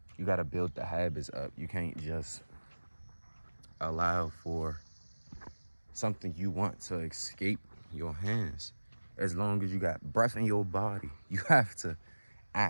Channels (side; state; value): both; inverted; correlation -1.00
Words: you got to build the habits up. You can't just allow for something you want to escape your hands. As long as you got breath in your body, you have to